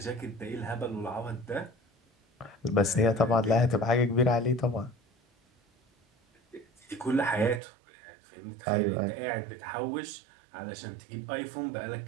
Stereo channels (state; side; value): drops out; left; at 7.6 s